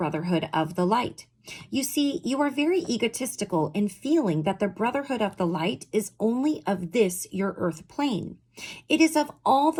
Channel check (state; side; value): identical; both; correlation 1.00